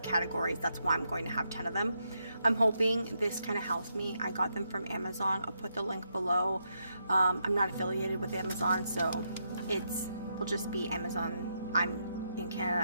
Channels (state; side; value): inverted; both; correlation -0.81